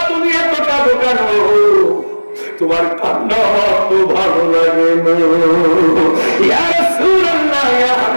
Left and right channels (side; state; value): both; inverted; correlation -1.00